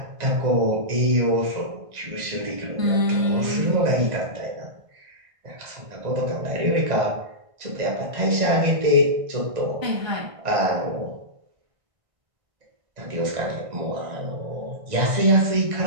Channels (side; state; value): left; late; 1.5 ms